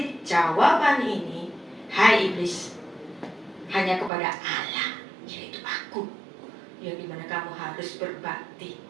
jawaban ini, hai iblis, hanya kepada Allah, yaitu aku, yang dimana kamu harus berbakti.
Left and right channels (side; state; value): left; drops out; at 4.1 s